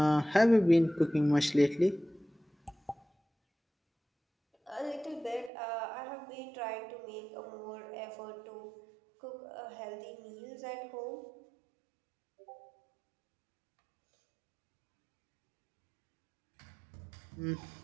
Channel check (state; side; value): drops out; left; at 5.5 s